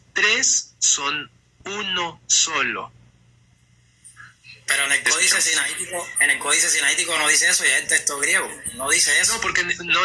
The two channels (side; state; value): both; identical; correlation 1.00